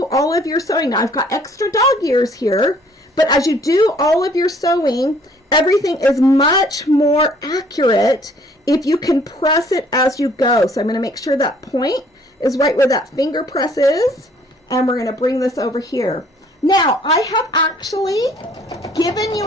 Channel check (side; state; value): both; normal; correlation 0.59